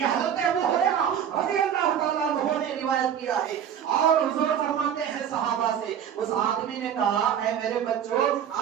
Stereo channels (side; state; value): left; quieter; 8.9 dB